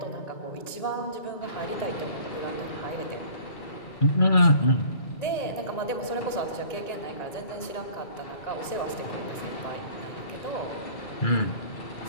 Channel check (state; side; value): late; right; 1.9 ms